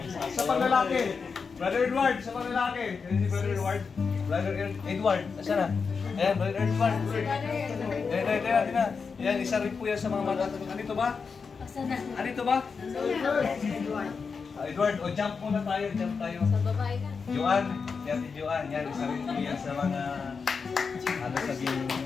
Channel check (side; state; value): right; quieter; 5.3 dB